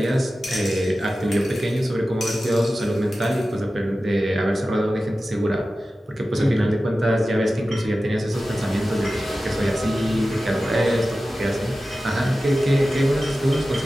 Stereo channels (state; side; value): normal; both; correlation 0.94